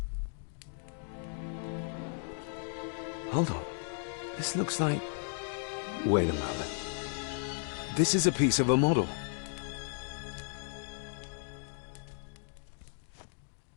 Hold on. This looks like... Wait a moment. This is a piece of a model.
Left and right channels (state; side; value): silent; right; 55 dB below the other